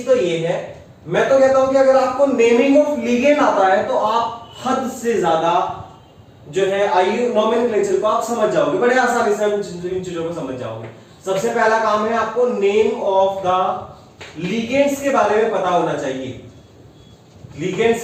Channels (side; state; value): both; identical; correlation 1.00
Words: तो ये है, मैं तो कहता हूं कि अगर आपको नेमिंग ऑफ लिगेंड आता है तो आप हद से ज्यादा जो है आयु नोमेनक्लेचर को आप समझ जाओगे, बड़े आसानी से इन चीजों को समझ जाओगे। सबसे पहला काम है आपको नेम ऑफ द लिगेंड्स के बारे में पता होना चाहिए। लिगेंड्स